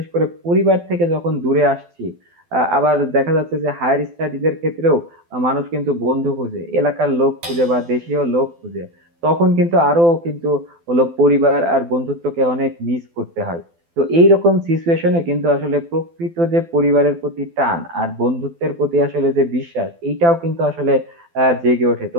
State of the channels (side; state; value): left; late; 12 ms